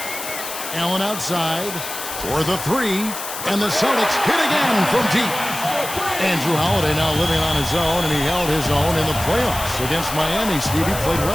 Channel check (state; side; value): noise; left; hiss, 8 dB below the sound